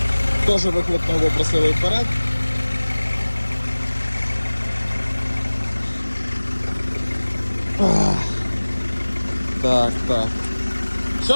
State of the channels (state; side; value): inverted; both; correlation -1.00